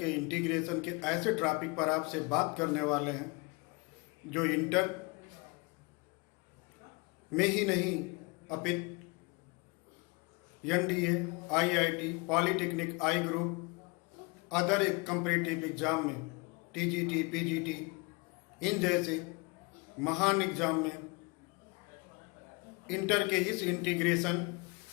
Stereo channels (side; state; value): right; quieter; 28.3 dB